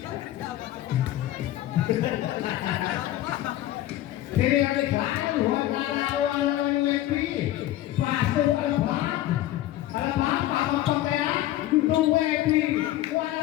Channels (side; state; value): right; quieter; 14.3 dB